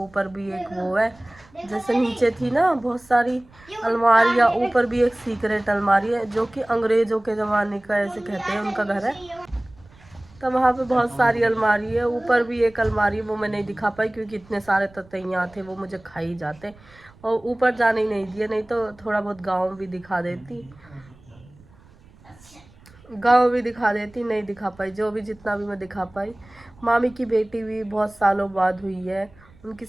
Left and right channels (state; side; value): noise; right; rumble, 26 dB below the sound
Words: भी एक वो है, जैसे नीचे थी ना बहुत सारी अलमारियाँ, ऊपर भी एक सीक्रेट अलमारी है जो कि अंग्रेजों के ज़माने का ऐसे कहते हैं उनका घर है। तो वहाँ पे बहुत सारी अलमारी है। ऊपर भी एक अलमारी है, वो मैं नहीं दिखा पाई क्योंकि इतने सारे ततैया थे, वो मुझे खा ही जाते और ऊपर जाने ही नहीं दिए, नहीं तो थोड़ा बहुत गाँव भी दिखा देती, नहीं दिखा पाई। जो भी जितना भी मैं दिखा पाई। मामी की बेटी भी बहुत सालों बाद हुई है, उनकी